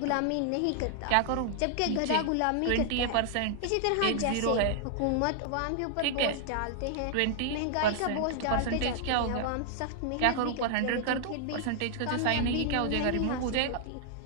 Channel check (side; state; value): both; different; correlation -0.01